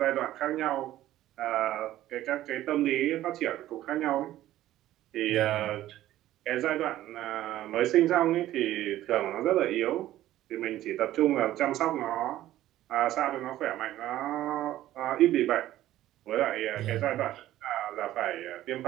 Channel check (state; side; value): quieter; left; 14.1 dB